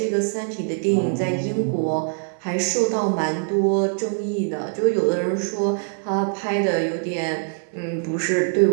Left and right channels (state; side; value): silent; left; digital silence